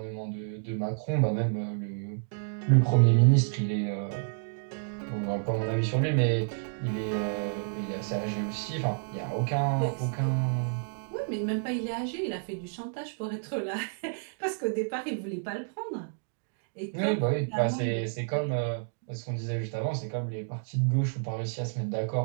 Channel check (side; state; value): left; silent; digital silence